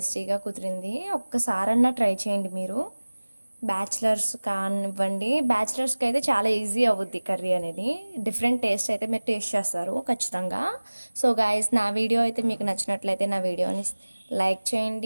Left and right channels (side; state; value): both; inverted; correlation -1.00